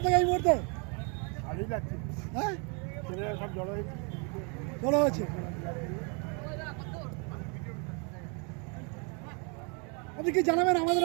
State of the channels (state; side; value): quieter; left; 35.2 dB